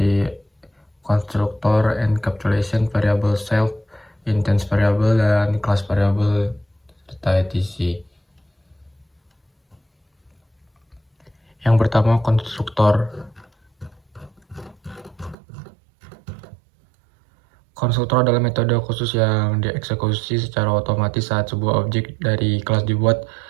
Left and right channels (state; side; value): drops out; left; at 15.4 s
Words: constructor, encapsulation, variable self, instance variable, dan class variable, serta etc. Yang pertama, konstruktor. Konstruktor adalah metode khusus yang dieksekusi secara otomatis saat sebuah objek dari kelas dibuat.